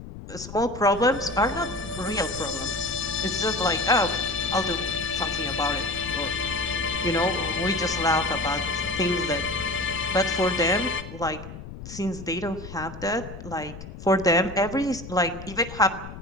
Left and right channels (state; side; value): noise; left; rumble, 13 dB below the sound